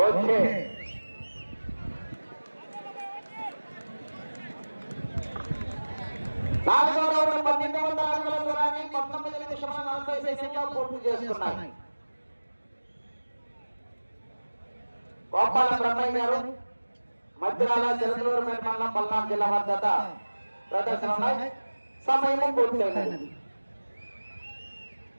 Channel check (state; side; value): inverted; both; correlation -1.00